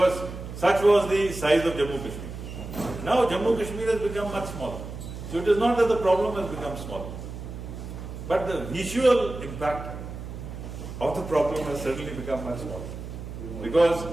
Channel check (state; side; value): noise; right; hum, 9 dB below the sound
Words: such was the size of Jammu Kashmir. Now Jammu Kashmir has become much smaller. So it is not that the problem has become smaller, but the visual impact of the problem has certainly become much smaller. Because